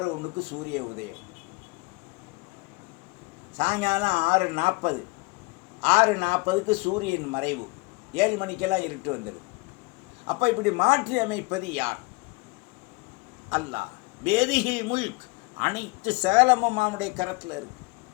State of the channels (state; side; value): quieter; right; 26.4 dB